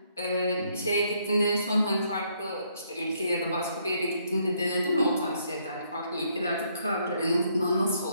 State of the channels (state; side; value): inverted; both; correlation -0.71